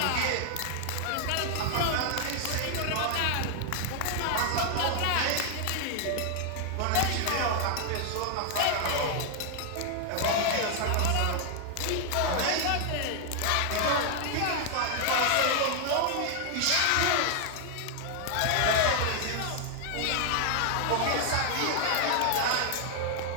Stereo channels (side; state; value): both; different; correlation 0.00